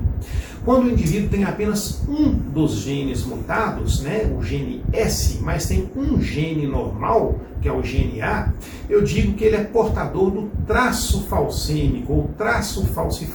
Quando o indivíduo tem apenas um dos genes mutados, né, o gene S, mas tem um gene normal, que é o gene A, eu digo que ele é portador do traço falcêmico ou traço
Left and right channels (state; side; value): identical; both; correlation 1.00